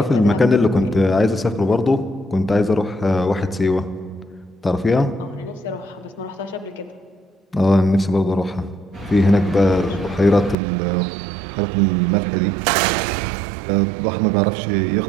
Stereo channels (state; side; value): drops out; left; at 10.6 s